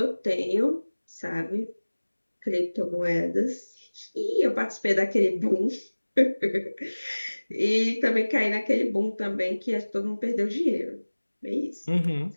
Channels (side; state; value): both; inverted; correlation -1.00